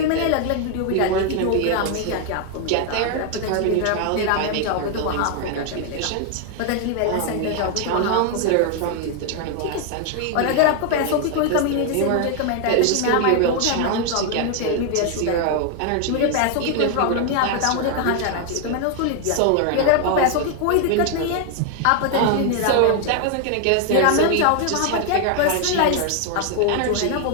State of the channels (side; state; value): both; different; correlation 0.00